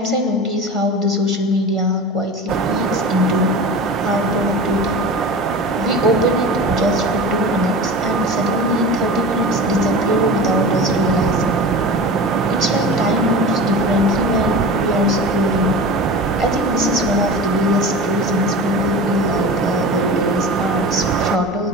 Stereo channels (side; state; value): both; normal; correlation 0.33